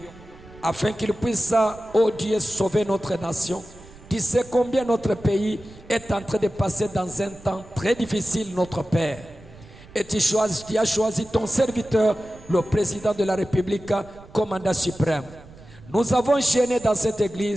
afin qu'il puisse, oh Dieu, sauver notre nation. Tu sais combien notre pays est en train de passer dans un temps très difficile, notre Père. Et tu as choisi ton serviteur, le président de la République, commandant suprême. Nous avons gêné dans cette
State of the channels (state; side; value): noise; right; rumble, 21 dB below the sound